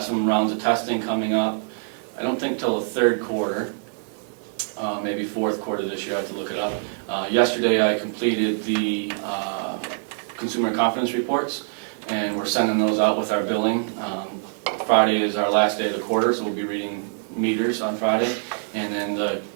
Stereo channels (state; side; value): silent; left; digital silence